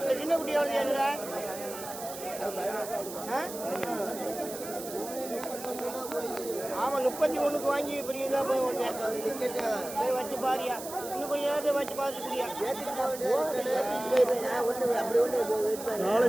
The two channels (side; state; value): right; noise; hiss, 11 dB below the sound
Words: சின்ன குட்டியா வந்து ஆமா 31க்கு வாங்கி பெரியதா போய் வச்சு பாரியா. இன்னும் கொஞ்சம் நேரத்தை வச்சு பார்த்துக்கிறியா?